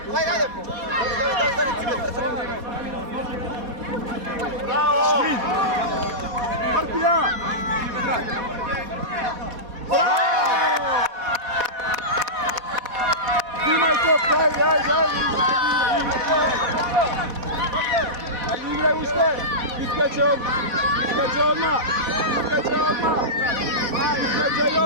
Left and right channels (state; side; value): late; left; 4.2 ms